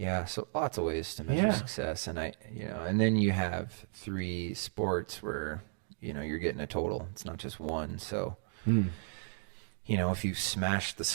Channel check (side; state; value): left; silent; digital silence